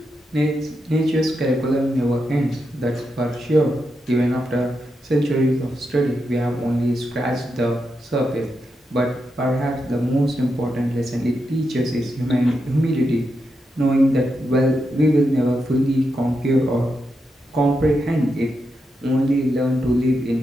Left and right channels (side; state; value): both; normal; correlation 0.85